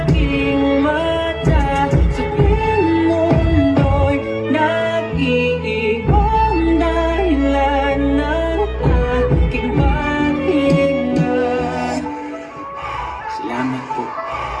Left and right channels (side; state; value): both; identical; correlation 1.00